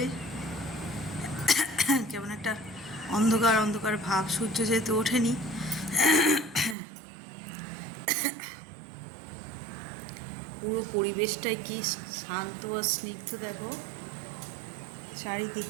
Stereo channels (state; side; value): drops out; left; at 6.8 s